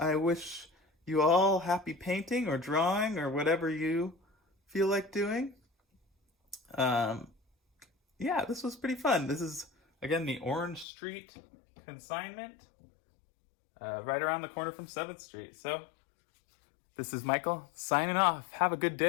wish you all happy painting or drawing or whatever you feel like doing. Yeah, this was pretty fun. This is, again, the Orange Street Consignment, right around the corner from 7th Street. So this is Michael signing off. Have a good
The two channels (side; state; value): right; drops out; at 10.9 s